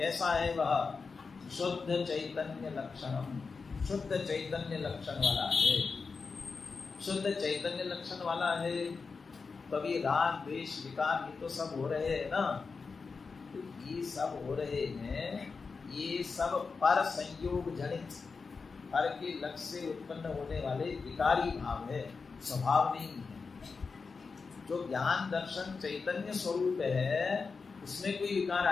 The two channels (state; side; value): quieter; right; 4.8 dB